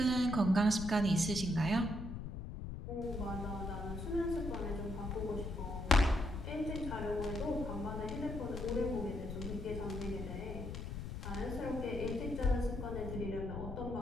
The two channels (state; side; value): noise; left; rumble, 6 dB below the sound